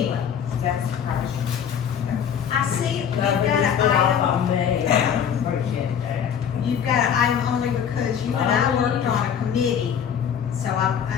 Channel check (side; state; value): right; quieter; 8.2 dB